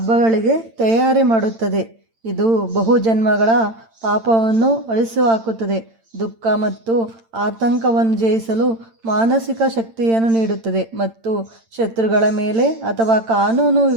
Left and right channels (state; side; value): late; left; 8.9 ms